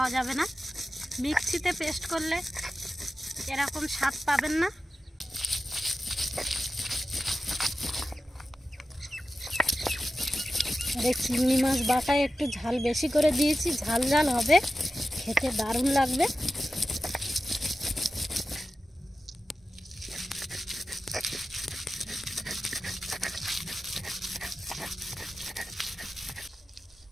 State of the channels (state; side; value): normal; both; correlation 0.93